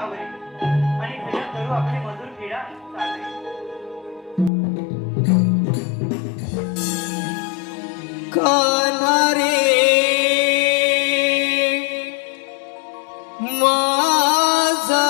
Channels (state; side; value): drops out; right; at 4.5 s